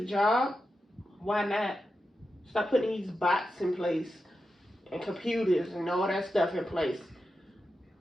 job, why not? Stop putting these bots in place and computers and all that stuff in place.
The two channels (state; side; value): normal; both; correlation 0.90